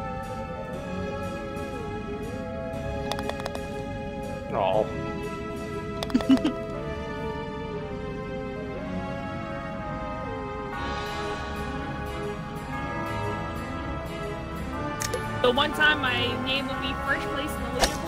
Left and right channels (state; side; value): identical; both; correlation 1.00